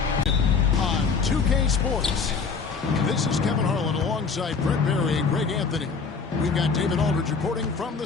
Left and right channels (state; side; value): quieter; right; 5.1 dB